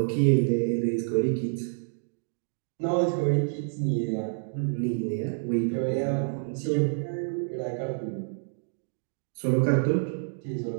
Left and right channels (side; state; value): left; silent; digital silence